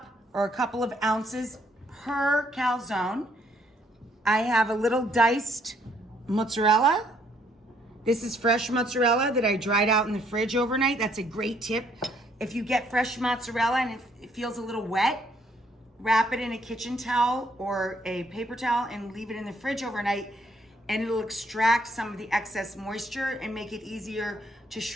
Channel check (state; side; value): normal; both; correlation 0.68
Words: or a couple of ounces per calzone. I have a little diced mozzarella. This is fresh mozzarella that I dried out in the fridge overnight. That's a great tip. If you get fresh mozzarella and it feels a little wet, wrap it in a kitchen towel or a paper towel and leave it in the fridge overnight, and it'll extract some of the excess moisture and make it easier to